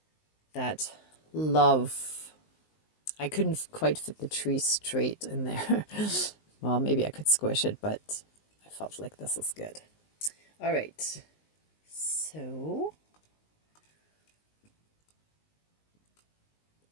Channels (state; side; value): late; right; 19 ms